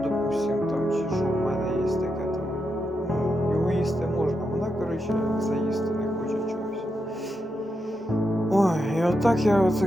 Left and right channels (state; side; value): normal; both; correlation 0.85